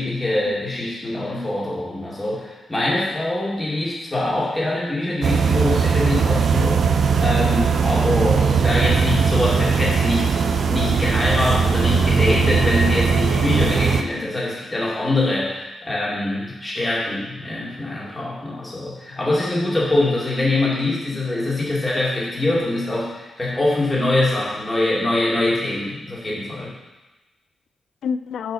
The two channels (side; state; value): both; normal; correlation 0.83